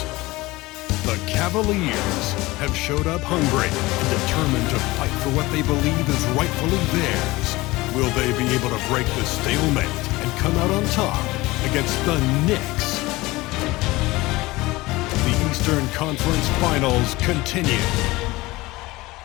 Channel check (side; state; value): right; quieter; 20.5 dB